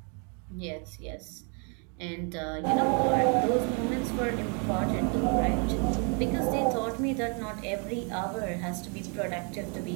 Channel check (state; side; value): quieter; left; 37.4 dB